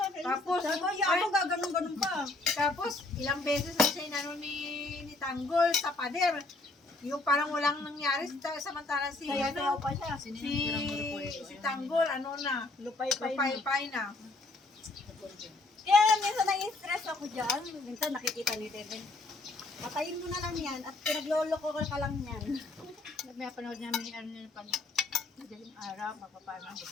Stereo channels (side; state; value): right; quieter; 3.1 dB